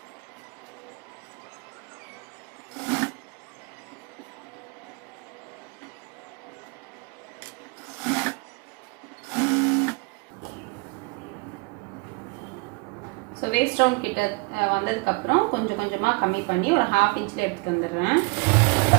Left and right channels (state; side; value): quieter; left; 29.8 dB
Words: ஸோ வேஸ்ட் ரவுண்ட் கிட்ட வந்ததுக்கப்புறம் கொஞ்சம் கொஞ்சமாக கம்மி பண்ணி ஒரு 1/2 இன்ச்சில் எடுத்துகிட்டு வந்துடுறேன்.